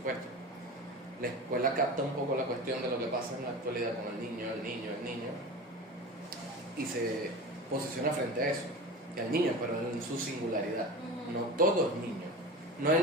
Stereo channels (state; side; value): normal; both; correlation 0.31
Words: La escuela capta un poco la cuestión de lo que pasa en la actualidad con el niño, y se posiciona frente a eso, que al niño, pero en su singularidad. No todo es niño, no